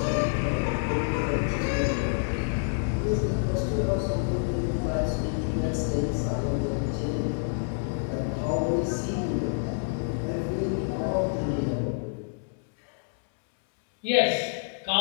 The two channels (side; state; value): right; silent; 60 dB below the other